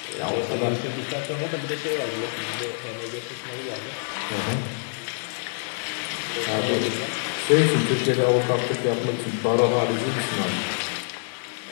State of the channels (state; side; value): silent; right; 56 dB below the other